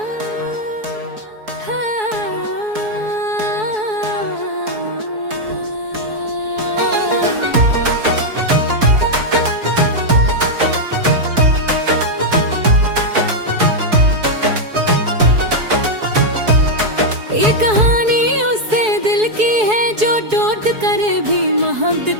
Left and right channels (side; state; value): left; late; 4.7 ms